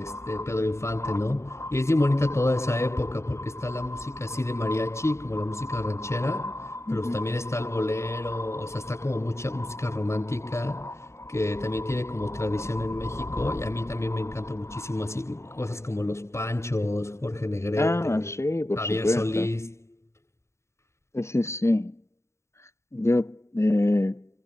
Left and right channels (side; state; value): right; late; 0.13 ms